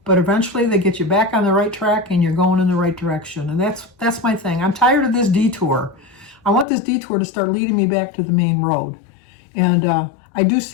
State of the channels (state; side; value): drops out; right; at 6.7 s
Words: but eventually they get you back on the right track and you're going in the right direction. And that's my thing. I'm tired of this detour. I want this detour to start leading me back to the main road. And I do